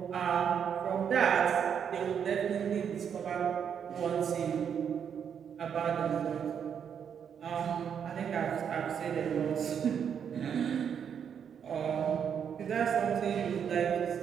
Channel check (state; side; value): quieter; left; 7.8 dB